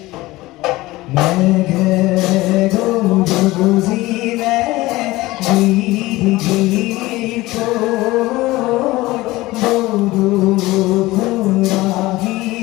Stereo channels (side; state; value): right; quieter; 19.2 dB